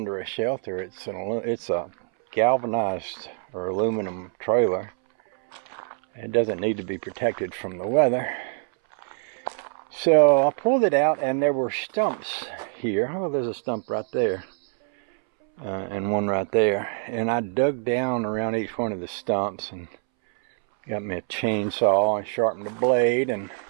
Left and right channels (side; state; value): left; silent; 62 dB below the other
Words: a shelter. It's a galvanized or aluminum trailer. It doesn't need to be protected from the weather. So I pulled it out and there were stumps here. Oh, there's a stump right there. And one right there. And I dug down around each one of the stumps and got me a chainsaw and sharpened the blade and